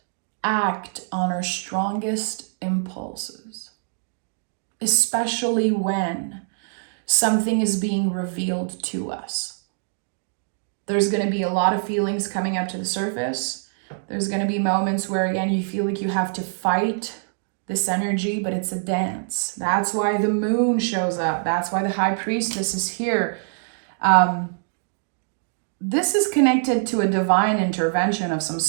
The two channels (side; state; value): left; silent; digital silence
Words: act on our strongest impulses, especially when something is being revealed to us. There's going to be a lot of feelings coming up to the surface. There's going to be moments where, again, you feel like you have to fight this energy, but it's a dance. That's why the moon shows up. That's why the High Priestess is here. this is connected to a divine intervention of some